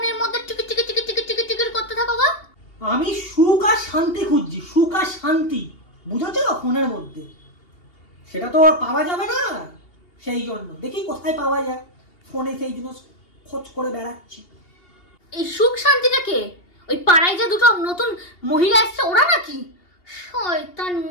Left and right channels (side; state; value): right; late; 2.8 ms